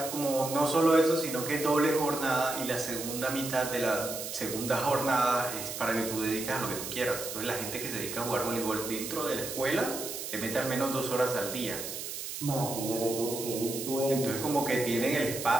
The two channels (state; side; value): noise; right; hiss, 7 dB below the sound